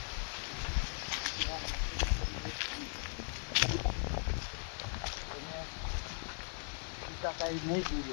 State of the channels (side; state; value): right; silent; 52 dB below the other